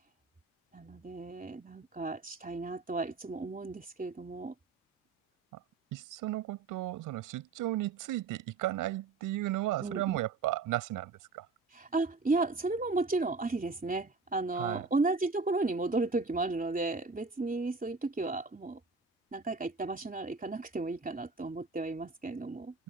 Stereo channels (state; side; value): quieter; left; 4.2 dB